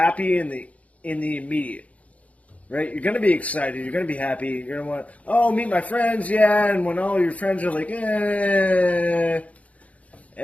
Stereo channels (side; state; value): right; late; 0.067 ms